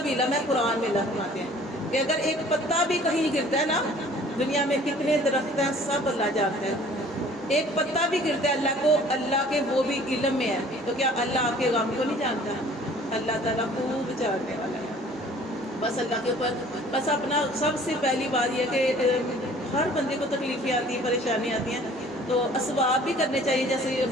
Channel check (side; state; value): both; normal; correlation 0.52